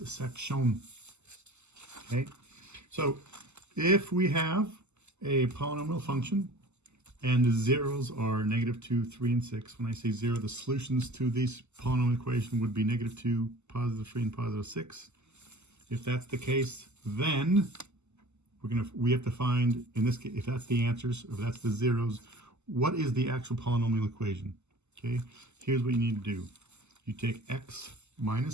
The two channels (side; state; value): left; late; 0.83 ms